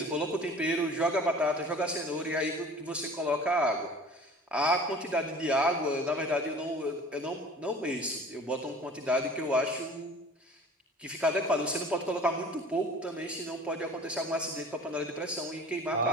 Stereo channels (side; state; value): both; normal; correlation 0.44